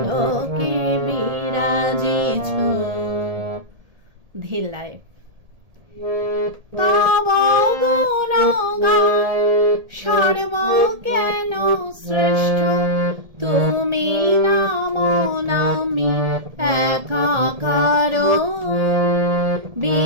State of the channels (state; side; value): late; left; 1.7 ms